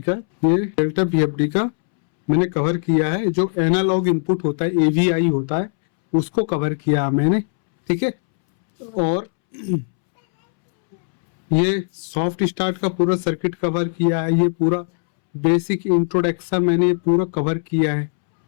का मैंने कवर किया है। जो एनालॉग इनपुट होता है, एवीआई होता है, उसको कवर किया मैंने, ठीक है। और ये सॉफ्ट स्टार्ट का पूरा सर्किट कवर किया है। ये पूरा बेसिक इंट्रोडक्शन मैंने ये पूरा कवर किया है।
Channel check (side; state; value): right; silent; 66 dB below the other